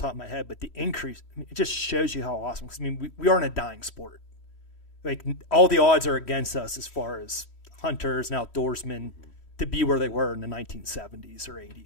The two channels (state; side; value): late; right; 3.1 ms